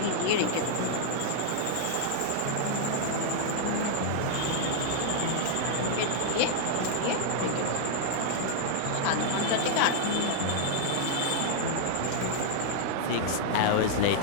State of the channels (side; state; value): both; different; correlation -0.01